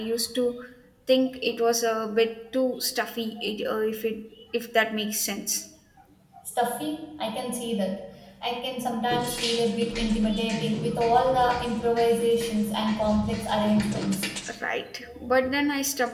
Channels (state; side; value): identical; both; correlation 1.00